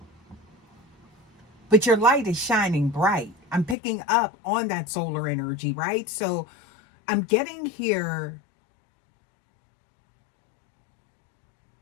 But your light is shining bright. I'm picking up on that solar energy, right? So I'm getting here.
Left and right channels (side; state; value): right; drops out; at 3.8 s